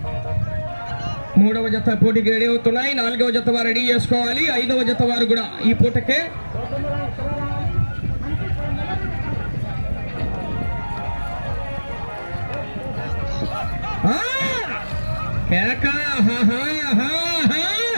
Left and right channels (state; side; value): inverted; both; correlation -1.00